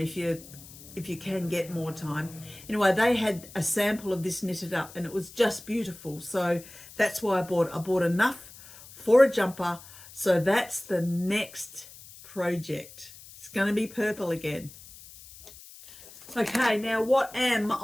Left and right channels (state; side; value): noise; left; hiss, 19 dB below the sound